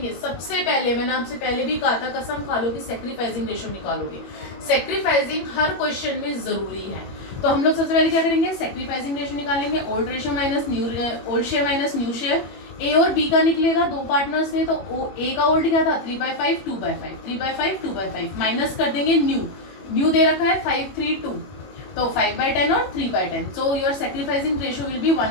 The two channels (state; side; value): late; right; 21 ms